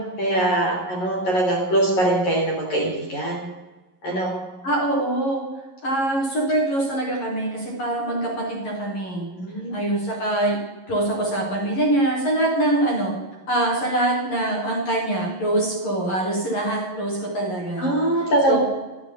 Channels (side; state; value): right; late; 11 ms